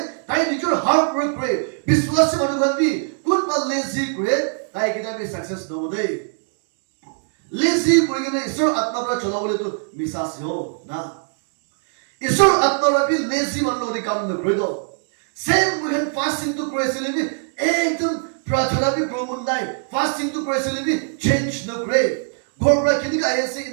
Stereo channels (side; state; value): left; silent; digital silence